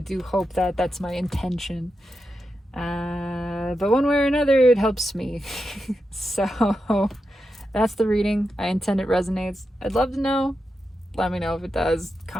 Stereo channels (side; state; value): both; normal; correlation 0.88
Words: hope that. That's my intention. But one way or another, it helps me. So that's the reading. I intend it resonates. I'd love to know. Let me know if it does.